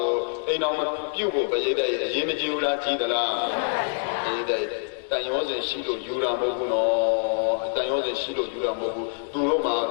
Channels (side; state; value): right; silent; digital silence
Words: ိုအိမ်တော်ပြုဖို့ပြည့်တဲ့အရေးမကြီးဘူးလားကြီးသလားကြီးတဲ့တန်ရောစဉ်ရှိလို့ယူတာမဟုတ်ဘူးနော်တန်ရောစဉ်ရှိလို့ယူတာမဟုတ်ဘူးသူတို့မှာ